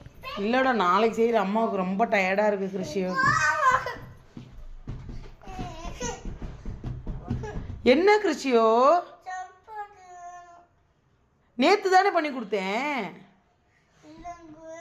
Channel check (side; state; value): both; identical; correlation 1.00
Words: இல்லடா நாளைக்கு செய்கிற. அம்மாவுக்கு ரொம்ப டயர்டாக இருக்கு கிருஷியோ. என்ன கிருஷியோ? நேத்து தானே பண்ணி கொடுத்தேன்.